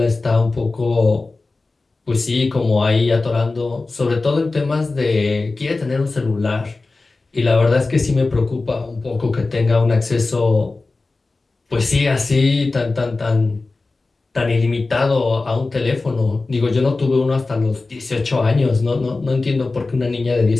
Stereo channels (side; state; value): right; quieter; 3.5 dB